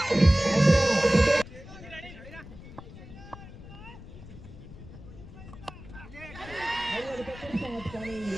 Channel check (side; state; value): left; noise; rumble, 16 dB below the sound